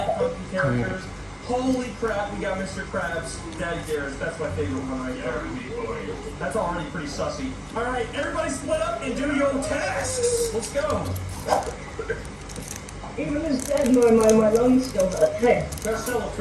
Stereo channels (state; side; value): identical; both; correlation 1.00